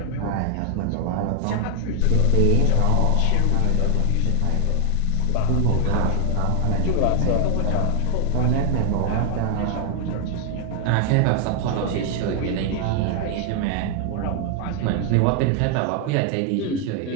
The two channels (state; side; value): different; both; correlation 0.00